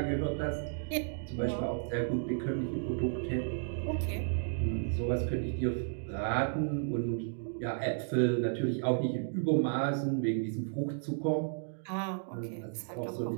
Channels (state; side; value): silent; left; digital silence